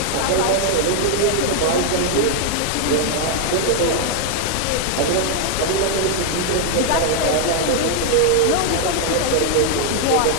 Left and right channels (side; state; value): both; different; correlation 0.00